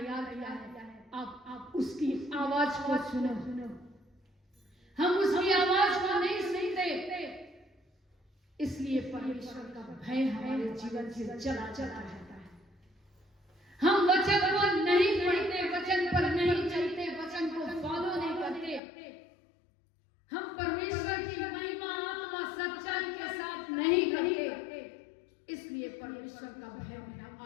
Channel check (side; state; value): right; drops out; at 18.8 s